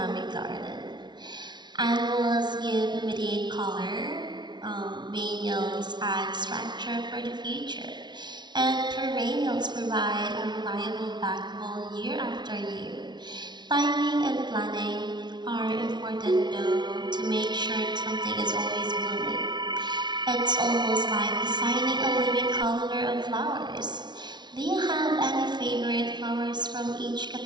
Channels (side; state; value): left; late; 0.21 ms